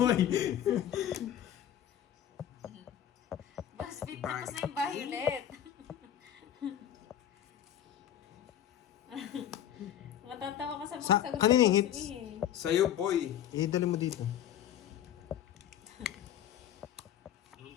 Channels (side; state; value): right; quieter; 10.6 dB